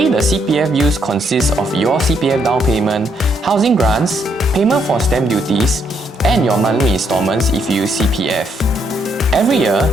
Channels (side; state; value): both; normal; correlation 0.73